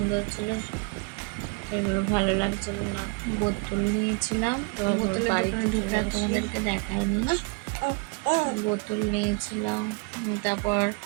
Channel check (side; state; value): left; quieter; 32.2 dB